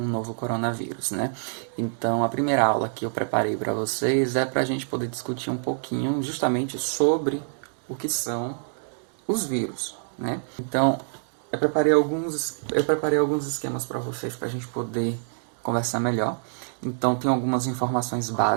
novo coronavírus, né? Então a primeira aula que eu preparei para vocês é para a gente poder discutir um pouquinho justamente sobre o que são os vírus, né? Então eu preparei alguns esquemas para vocês para a gente poder conversar melhor. Então tem algumas informações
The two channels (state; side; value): silent; left; digital silence